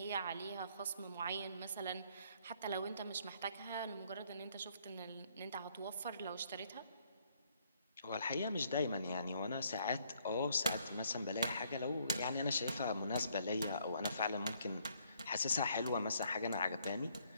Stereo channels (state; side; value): inverted; both; correlation -0.68